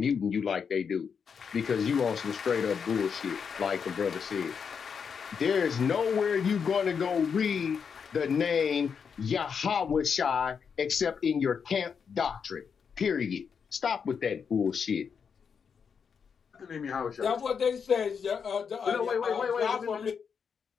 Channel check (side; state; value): right; quieter; 6.5 dB